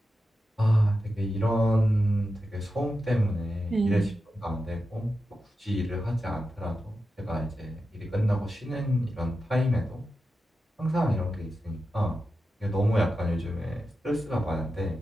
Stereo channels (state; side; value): normal; both; correlation 0.90